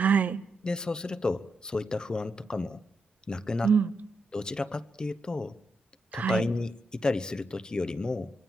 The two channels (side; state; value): both; normal; correlation 0.84